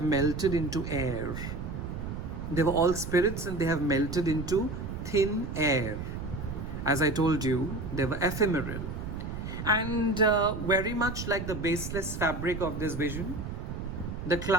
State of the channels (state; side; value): noise; right; rumble, 6 dB below the sound